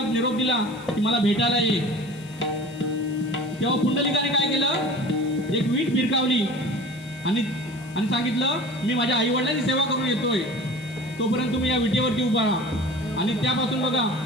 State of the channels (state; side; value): noise; left; hiss, 24 dB below the sound